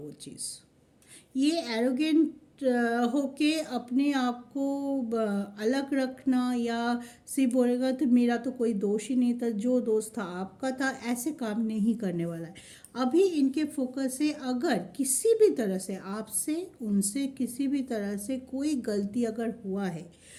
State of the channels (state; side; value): identical; both; correlation 1.00